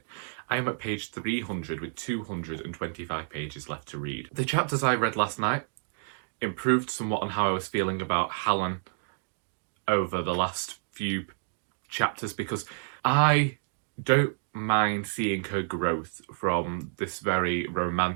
I am at page 300 with 225 pages left to read. The chapters I read last night improved somewhat on how I was feeling about Helen over the last few chapters, because I don't mind seeing her growth from this very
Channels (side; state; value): left; silent; digital silence